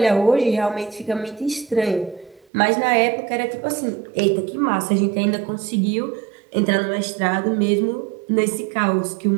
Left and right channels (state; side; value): drops out; left; at 2.5 s